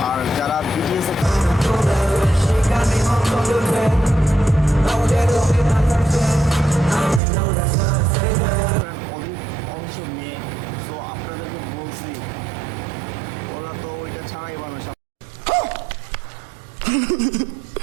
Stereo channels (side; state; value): left; drops out; at 7.2 s